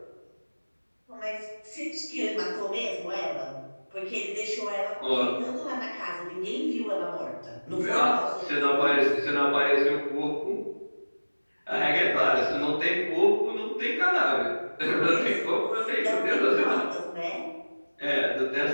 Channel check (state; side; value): inverted; both; correlation -1.00